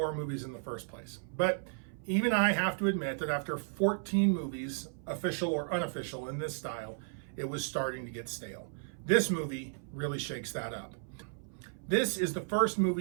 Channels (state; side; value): silent; left; 55 dB below the other